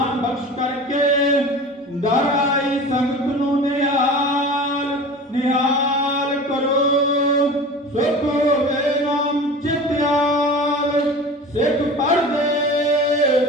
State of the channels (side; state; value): both; normal; correlation 0.36